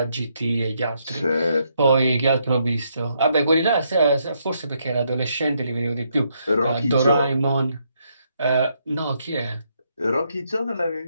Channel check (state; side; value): inverted; both; correlation -0.75